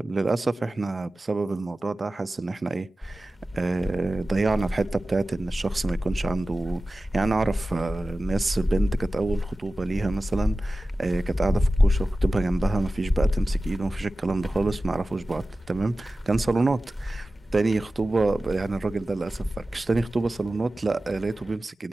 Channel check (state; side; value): normal; both; correlation 0.95